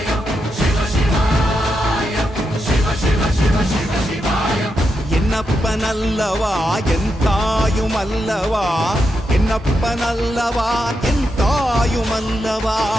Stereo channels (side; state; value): both; normal; correlation 0.85